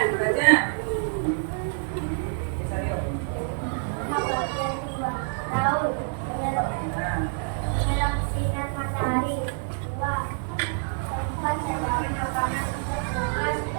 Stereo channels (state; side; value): silent; left; digital silence